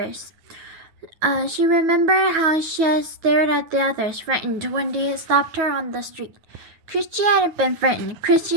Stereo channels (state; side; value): late; left; 9.3 ms